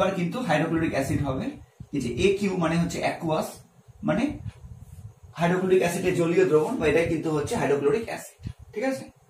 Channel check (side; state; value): both; identical; correlation 1.00